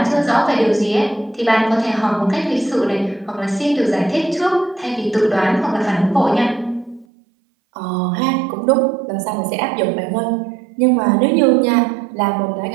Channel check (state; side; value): drops out; left; at 7.1 s